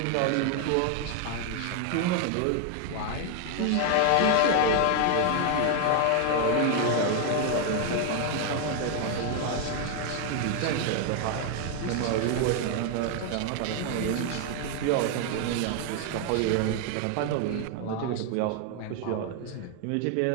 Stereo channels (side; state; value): both; different; correlation 0.00